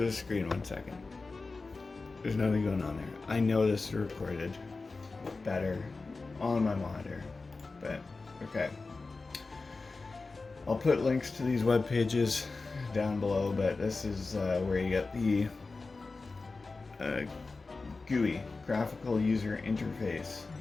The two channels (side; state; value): right; quieter; 3.8 dB